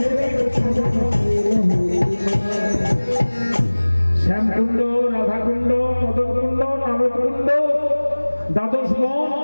শ্যামকুণ্ড, রাধাকুণ্ড, মদনকুণ্ড, নারদকুণ্ড, দ্বাদশ বন,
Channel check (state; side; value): inverted; both; correlation -1.00